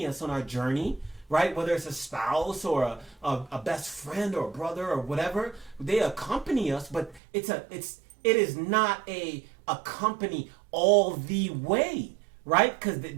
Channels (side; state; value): left; drops out; at 7.2 s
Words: us on our journey, right? Whether it's a spouse or a best friend or a brother or whatever, they accompany us, but it is not a accompany all the way. Right? Because